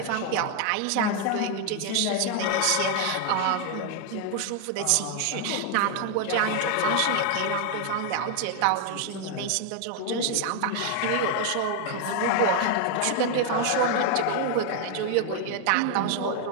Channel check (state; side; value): different; both; correlation 0.00